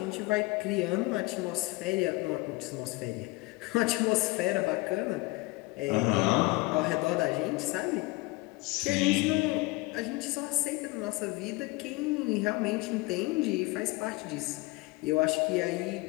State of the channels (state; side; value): quieter; right; 23.0 dB